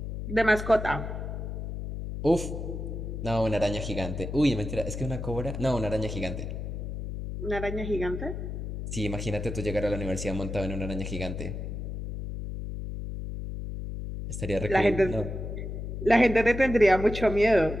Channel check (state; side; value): noise; left; hum, 6 dB below the sound